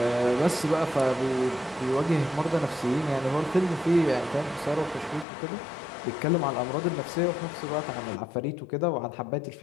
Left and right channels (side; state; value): right; drops out; at 5.2 s